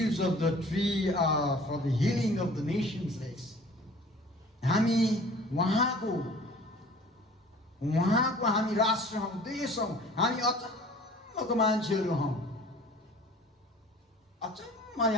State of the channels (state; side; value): normal; both; correlation 0.48